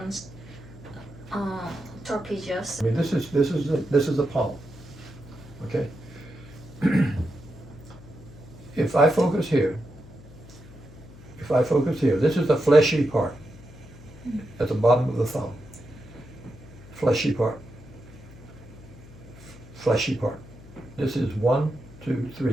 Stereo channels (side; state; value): left; noise; hum, 19 dB below the sound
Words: trapezius. I mean, this is the palm. Okay. If I focus here, this is the fleshy part at the bottom of the thumb. Fleshy part. Fleshy part. This is 1, 2,